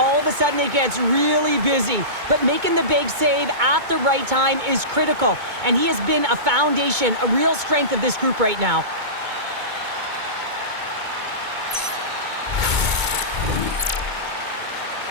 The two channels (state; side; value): late; left; 2.2 ms